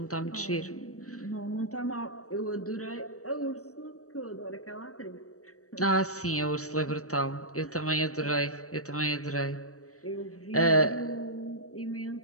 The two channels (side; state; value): right; late; 0.65 ms